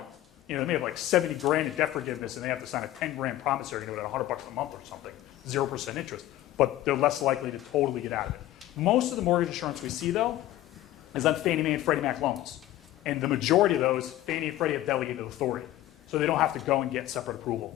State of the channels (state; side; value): quieter; right; 14.6 dB